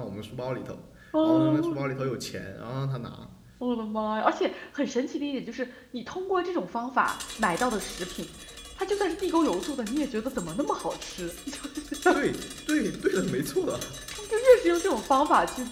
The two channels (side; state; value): both; identical; correlation 1.00